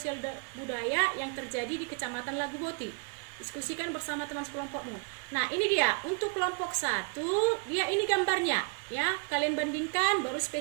budaya yang terjadi di Kecamatan Laguboti. Diskusikan bersama teman sekelompokmu. Nah, ini dia untuk kelompok 1, dia ini gambarnya ya. Kalian bandingkan baru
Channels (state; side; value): quieter; left; 37.5 dB